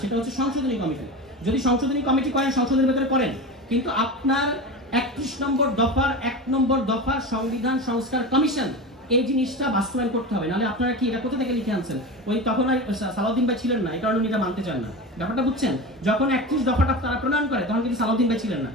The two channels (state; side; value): normal; both; correlation 0.26